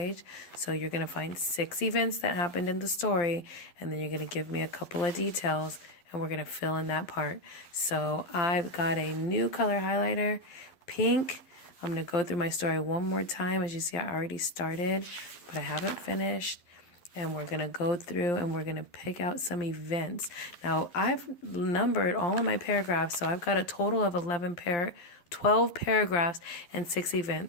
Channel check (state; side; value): late; right; 12 ms